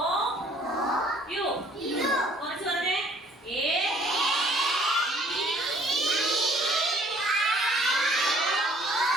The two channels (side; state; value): both; normal; correlation 0.58